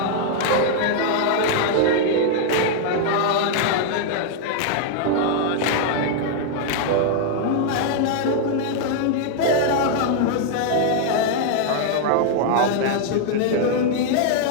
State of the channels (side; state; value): both; different; correlation -0.01